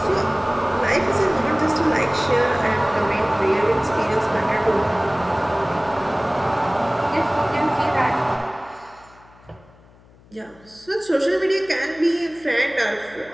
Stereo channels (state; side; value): noise; left; hum, 27 dB below the sound